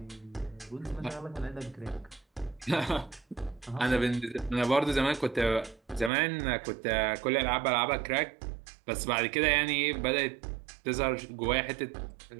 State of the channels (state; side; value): drops out; left; at 6.1 s